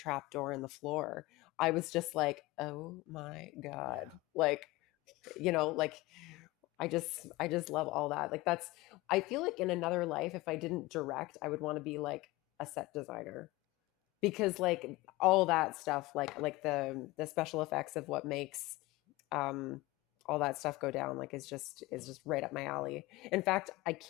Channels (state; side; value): quieter; right; 20.5 dB